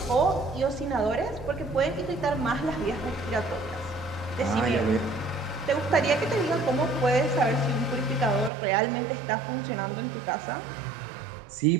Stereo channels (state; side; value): drops out; left; at 8.5 s